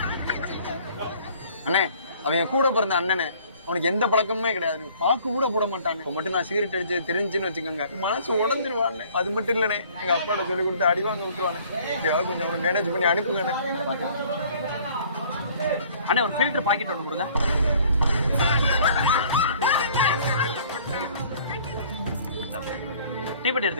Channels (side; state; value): both; inverted; correlation -0.55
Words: அண்ணே அவன் கூட பிறந்த அண்ணனே, அவனுக்கு எந்த பழக்கமுமே கிடையாது, பாக்கு கூட போட மாட்டானே. இப்போ மட்டும் நான் சிகரெட் அடிச்சு தெரிஞ்சுன்னு வச்சுக்கோங்க, மனசு உடஞ்சிருவானே. அது மட்டும் இல்லைண்ணே, எங்க அப்பாட்ட சொல்லி கொடுத்து அடி வாங்க விட்டுருவானே. எப்படியாவது கொஞ்சம் அவனை மேனேஜ் பண்ணி அனுப்புங்கண்ணே. அண்ணே ஒரு ஃபில்டர் பாக்கெட் ஒன்று கொடுங்க. டீப்பட்டி